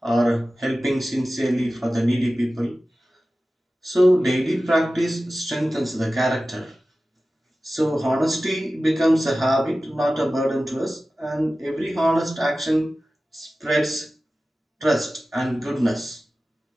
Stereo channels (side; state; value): both; normal; correlation 0.95